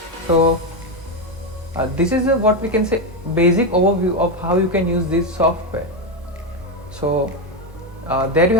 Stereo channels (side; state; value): both; normal; correlation 0.09